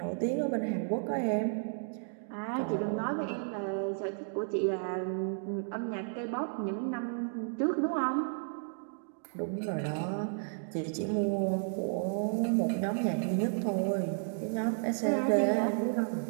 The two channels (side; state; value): left; silent; digital silence